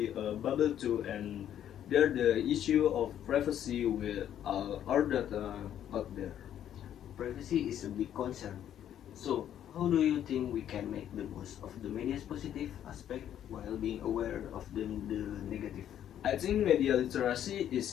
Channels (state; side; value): quieter; right; 10.5 dB